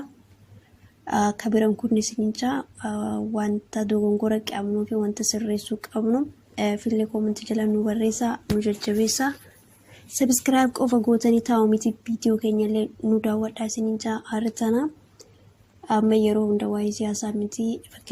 Kabiran kun nisincha wanta dogongora qabnu fi wanta sirreessuu qabnu fille comment jala nu barreessa nu jajjabeessa subscribe qofa gootanii taa'u miti video keenyallee nu daawwadhaa isincha hartana amma yeroo hunda waa'ee siyaasaa miti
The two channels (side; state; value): both; identical; correlation 1.00